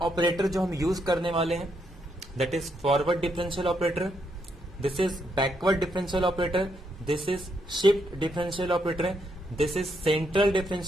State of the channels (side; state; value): both; normal; correlation 0.77